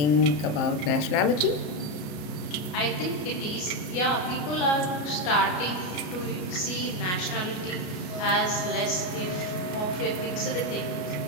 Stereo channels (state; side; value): late; right; 33 ms